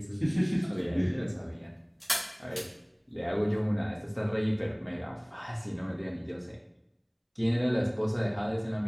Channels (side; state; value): both; identical; correlation 1.00